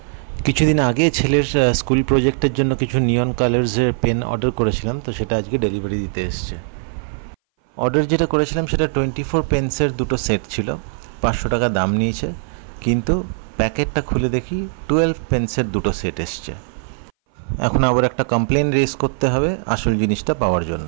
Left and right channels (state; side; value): silent; left; 60 dB below the other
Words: কিছুদিন আগে ছেলের স্কুল প্রজেক্টের জন্য কিছু নিয়ন কালার্সের পেন অর্ডার করেছিলাম, তো সেটা আজকে ডেলিভারি দিতে এসছে। অর্ডার যেটা করেছিলাম সেটা 24 পেন্সের দুটো সেট ছিল, 500 টাকা দাম নিয়েছে, কিন্তু প্যাকেটটা খুলে দেখি 12 পেন্সের দুটো সেট এসছে। এখন আবার একটা কমপ্লেন রেজ করতে হবে আসল জিনিসটা পাওয়ার